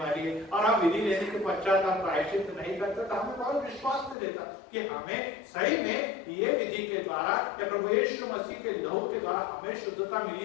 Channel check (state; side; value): drops out; right; at 4.2 s